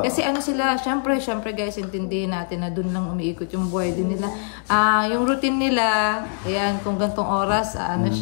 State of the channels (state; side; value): silent; right; 64 dB below the other